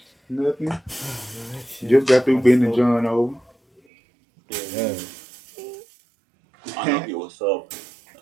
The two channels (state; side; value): drops out; left; at 3.8 s